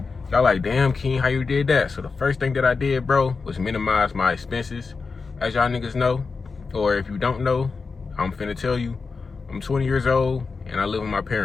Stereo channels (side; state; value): right; quieter; 4.6 dB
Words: y'all like, damn, Keen, how you did that? So the first thing that I did, bro, was minimize my expenses. As y'all niggas know, or if you don't know, I'm finna tell you, I'm 20 years old and I live with my